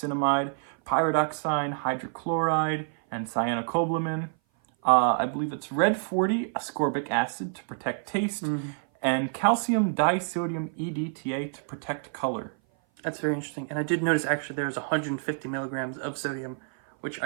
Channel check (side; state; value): left; silent; 56 dB below the other